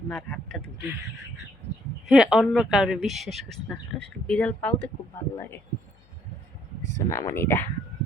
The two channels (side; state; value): left; noise; hum, 30 dB below the sound